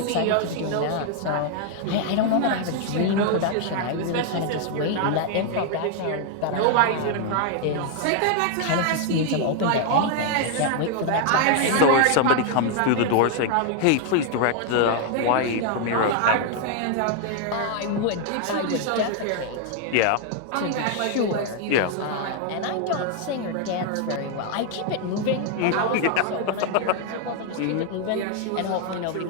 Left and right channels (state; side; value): different; both; correlation 0.00